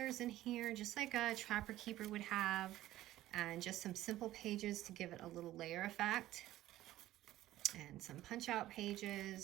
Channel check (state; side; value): quieter; left; 14.8 dB